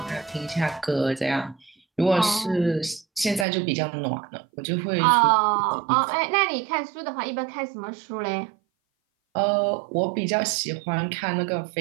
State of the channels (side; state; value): left; drops out; at 3.5 s